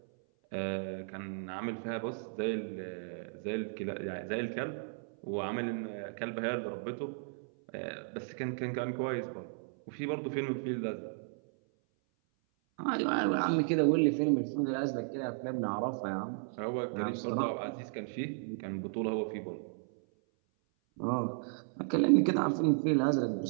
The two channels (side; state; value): left; silent; 55 dB below the other